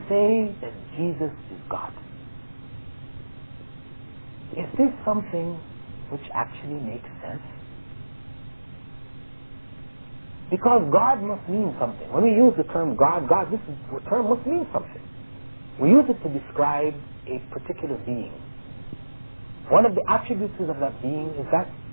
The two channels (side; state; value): both; inverted; correlation -1.00